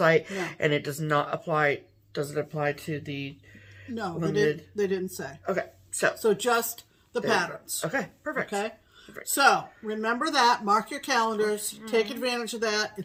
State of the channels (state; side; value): identical; both; correlation 1.00